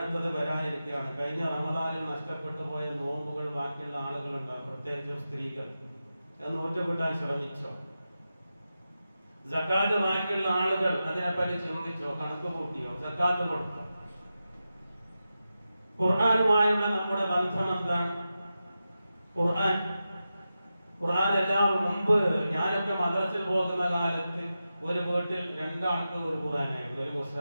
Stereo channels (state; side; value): inverted; both; correlation -0.91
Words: വരാനിരിക്കുകയാണ്. കഴിഞ്ഞ റമദാനിൽ നഷ്ടപ്പെട്ടു പോയ നോമ്പുകൾ ബാക്കിയുള്ള ആളുകളുണ്ടാകും, പ്രത്യേകിച്ചും സ്ത്രീകൾ. അത് നൂറ്റുകിട്ടാൻ ശ്രമിച്ചോ? സക്കാത്ത് ബാക്കിയുള്ള ആളുകൾ അതിനെപ്പറ്റി ചിന്തിച്ചോ? കണക്ക് കൂട്ടിയോ? സക്കാത്ത് കൊടുത്തോ? ഖുർആനുമായുള്ള നമ്മുടെ ബന്ധം എന്താണ്? ഖുർആൻ എല്ലാവരും മുമ്പ് ഞാനൊക്കെ മദ്രസയിൽ പോകുന്ന കാലത്ത് ഒരു വീട്ടിൽ രണ്ടാൾക്ക് ഒരു ഖുർആനായിരുന്നു, ഒരു